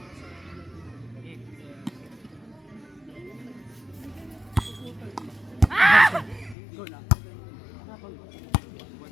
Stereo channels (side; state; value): right; drops out; at 6.6 s